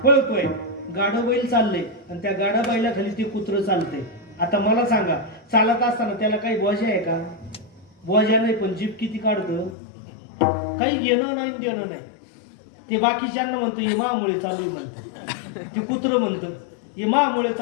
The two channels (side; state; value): right; drops out; at 9.8 s